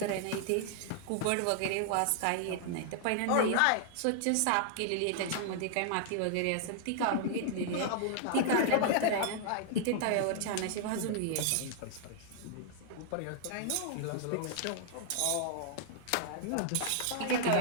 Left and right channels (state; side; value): different; both; correlation -0.01